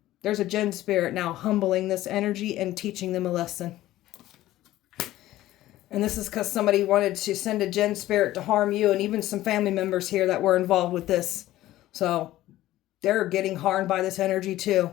there's a jinn spirit now humbling this energy and teaching them a lesson. And this is because somebody wanted to send a jinn spirit to harm you, and even some family members here that were involved with this. So they're getting harmed by this energy too.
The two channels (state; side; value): quieter; right; 15.2 dB